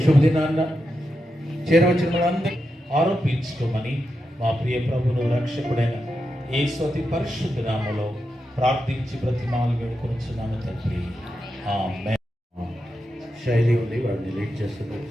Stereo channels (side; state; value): both; normal; correlation 0.87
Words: శుభదినాన్న చేరవచ్చిన వాళ్ళందరూ ఆరోపించుకోమని మా ప్రియ ప్రభును రక్షకుడైన యేసు అతి పరిశుద్ధ నామములో ప్రార్థించి బ్రతిమాలు వేడుకొనుచున్నాము తండ్రి. ఆమేన్. శైలి ఉంది, వాడిని లీడ్ చేస్తుంది.